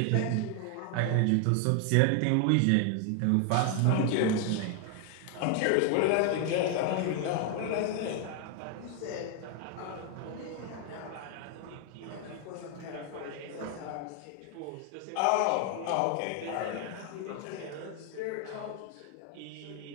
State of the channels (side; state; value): both; different; correlation 0.00